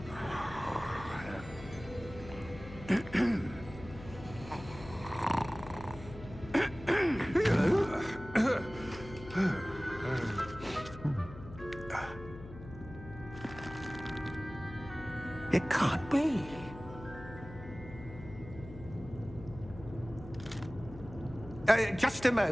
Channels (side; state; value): left; noise; hum, 14 dB below the sound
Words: It can't be. Just a